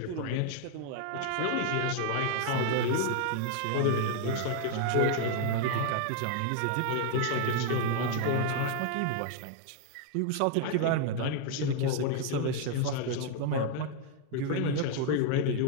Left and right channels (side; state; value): both; different; correlation 0.00